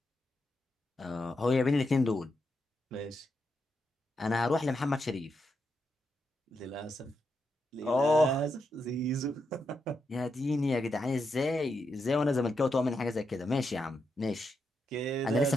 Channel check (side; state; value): both; normal; correlation 0.83